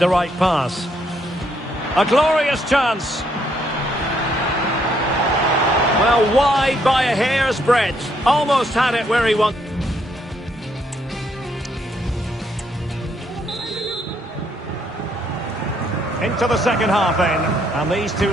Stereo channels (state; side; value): normal; both; correlation 0.72